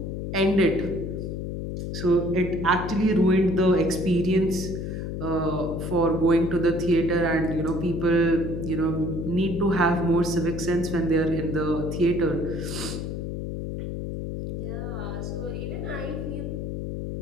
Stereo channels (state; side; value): noise; left; hum, 4 dB below the sound